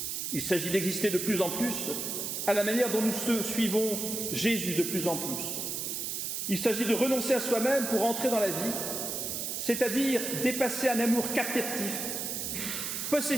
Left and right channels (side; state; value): right; noise; hiss, 3 dB below the sound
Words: Il s'agit d'exister de plus en plus à la manière dont nous suivons Jésus de plus en plus. Il s'agit de renoncer à soi-même pour entrer dans la vie, c'est-à-dire dépasser un amour captif,